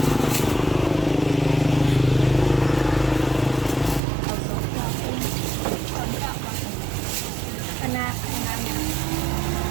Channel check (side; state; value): left; drops out; at 4.0 s